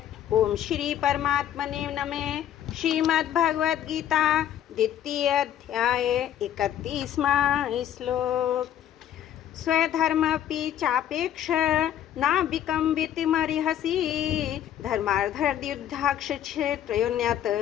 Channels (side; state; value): right; quieter; 10.8 dB